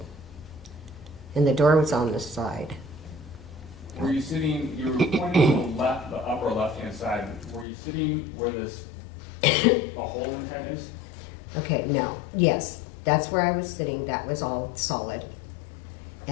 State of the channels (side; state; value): right; drops out; at 7.7 s